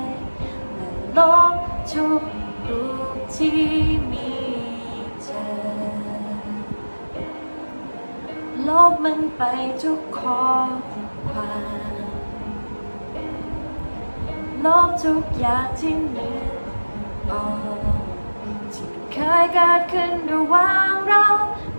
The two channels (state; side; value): inverted; both; correlation -1.00